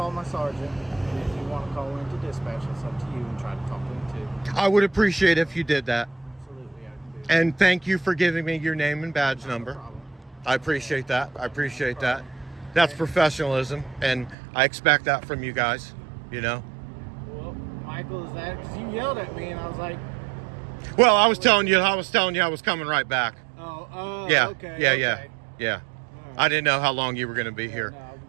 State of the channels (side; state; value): left; drops out; at 14.4 s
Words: my sergeant, and if you want to call into dispatch, it's up to you, and try to talk to him too. I would appreciate if you did that. Absolutely, I can do that. And thank you for giving me your name and badge number. No problem. I appreciate that. I appreciate that. That's professionalism, and I expect that from you guys, you know? Well, Michael, is that because you yelled at me, and I was like, Well, I was telling you I was coming right back. oh, Yeah, okay, yeah, okay. yeah. All right. I didn't know how long you were going to be here. No,